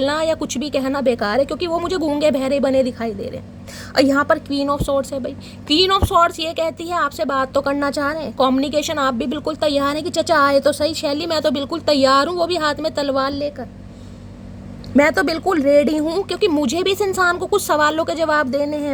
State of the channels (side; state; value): both; identical; correlation 1.00